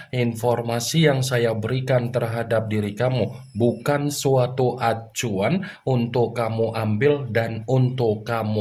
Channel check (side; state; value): both; identical; correlation 1.00